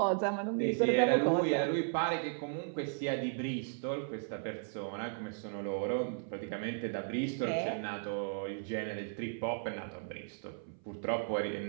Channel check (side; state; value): left; silent; 54 dB below the other